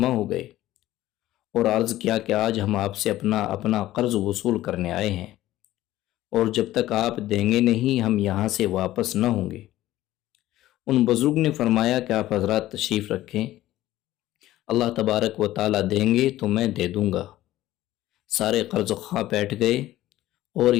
ہو گئے اور عرض کیا کہ آج ہم آپ سے اپنا قرض وصول کرنے آئے ہیں، اور جب تک آپ دیں گے نہیں ہم یہاں سے واپس نہ ہوں گے۔ ان بزرگ نے فرمایا کہ آپ حضرات تشریف رکھیں، اللہ تبارک و تعالیٰ دیں گے تو میں دے دوں گا۔ سارے قرض خواہ بیٹھ گئے اور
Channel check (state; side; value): quieter; right; 15.1 dB